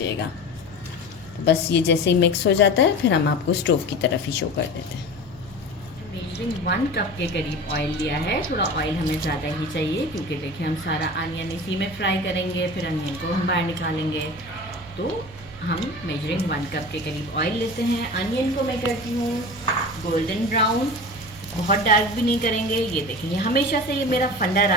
तो बस ये जैसे ही मिक्स हो जाता है फिर हम आपको स्टोव की तरफ ही शो कर देते हैं। मेजरिंग 1 कप के करीब ऑयल लिया है। थोड़ा ऑयल हमें ज़्यादा ही चाहिए क्योंकि देखिए हम सारा अनियन इसी में फ्राई करेंगे, फिर अनियन को हम बाहर निकालेंगे। तो हम मेजरिंग 1 कप के करीब ऑयल लेते हैं। अनियन को मैं करती हूँ गोल्डन ब्राउन, बहुत डार्क भी नहीं करेंगे। ये देखिए हमेशा से ये मेरा फंडा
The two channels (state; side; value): noise; right; hum, 21 dB below the sound